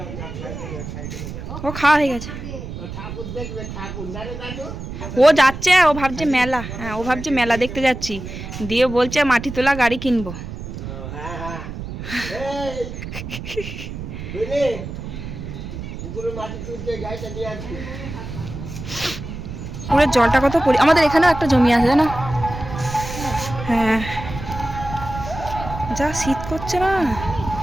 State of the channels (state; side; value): noise; right; rumble, 9 dB below the sound